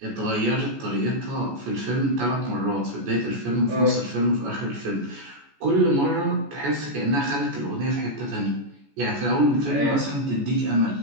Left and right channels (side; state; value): left; late; 14 ms